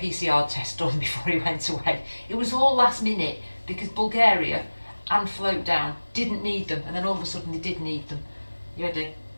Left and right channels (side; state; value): both; inverted; correlation -1.00